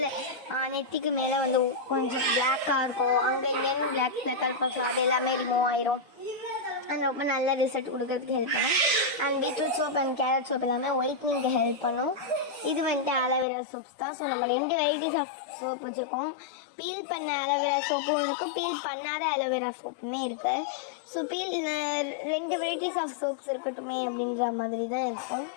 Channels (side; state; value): right; drops out; at 13.5 s